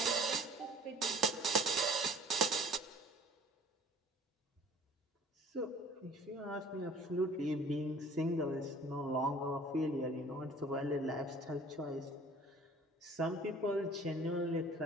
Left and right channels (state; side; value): normal; both; correlation 0.50